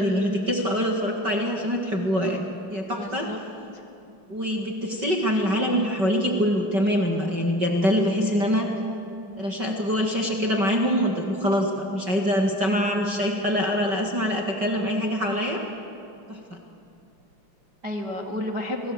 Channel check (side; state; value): left; late; 5.3 ms